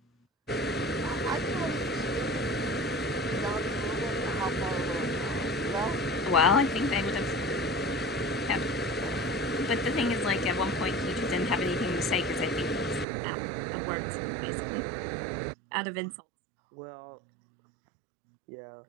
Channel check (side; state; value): left; drops out; at 13.1 s